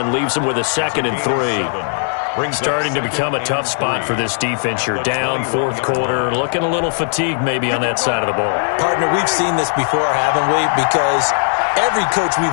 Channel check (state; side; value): silent; right; digital silence